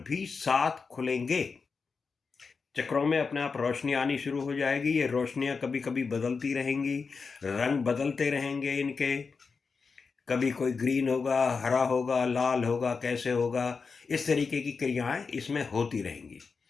भी साथ खुलेंगे। चक्रों में अपने आप रोशनी आनी शुरू हो जाएगी। ये रोशनियां कभी कभी बदलती रहेंगी, रंग बदलते रहेंगे इनके, कभी कोई ग्रीन होगा, हरा होगा, लाल होगा, कैसे होगा, इस तरीके की क्रियाएं इसमें होती रहेंगी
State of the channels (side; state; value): right; quieter; 4.9 dB